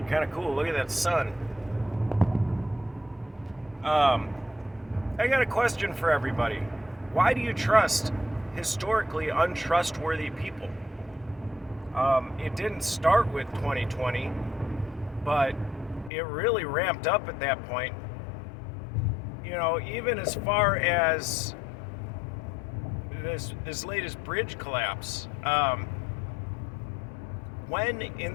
kind of cool. Look at that sun. I got a question for everybody. Why do you trust historically untrustworthy people? It didn't start with 2020, but it really ramped up at that point. You know, even as far as this latest bridge collapse. When in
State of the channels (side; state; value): right; drops out; at 16.1 s